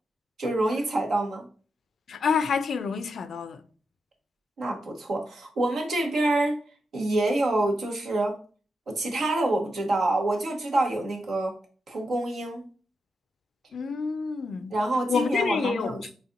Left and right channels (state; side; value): normal; both; correlation 0.85